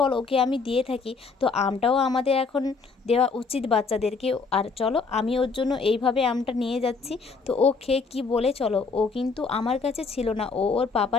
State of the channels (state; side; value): quieter; right; 4.6 dB